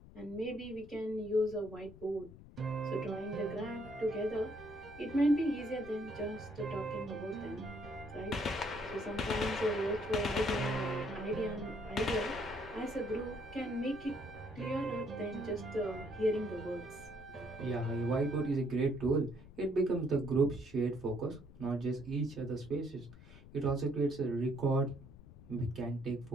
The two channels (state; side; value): noise; left; rumble, 18 dB below the sound